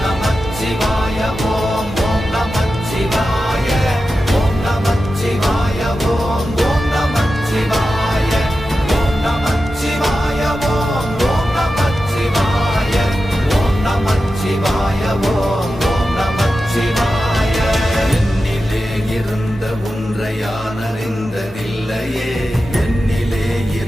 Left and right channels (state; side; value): normal; both; correlation 0.92